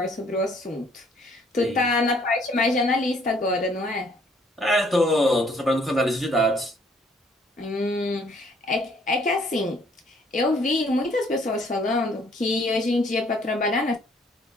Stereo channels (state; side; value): normal; both; correlation 0.63